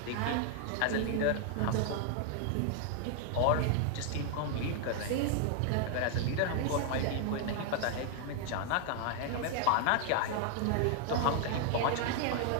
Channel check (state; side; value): different; both; correlation 0.00